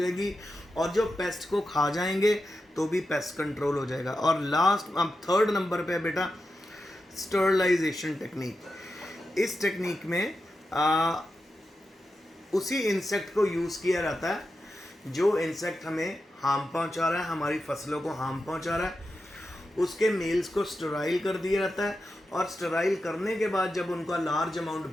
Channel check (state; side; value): normal; both; correlation 0.89